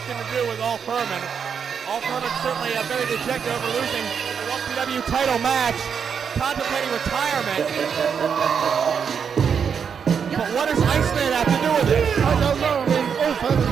to do with All Firman. All Firman's certainly very dejected over losing the LPW title match, contemplating retirement. But what does Iceman have to do with it? I don't know. I mean, All Firman's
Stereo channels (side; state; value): left; quieter; 6.9 dB